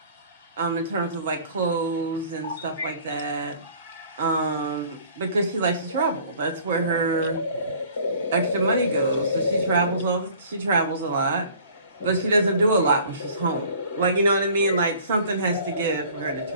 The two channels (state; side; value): inverted; both; correlation -0.51